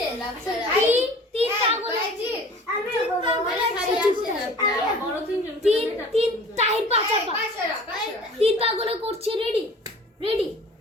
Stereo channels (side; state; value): both; normal; correlation 0.46